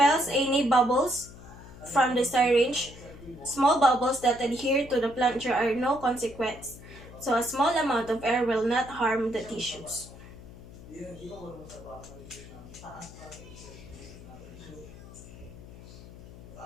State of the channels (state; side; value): noise; left; hum, 17 dB below the sound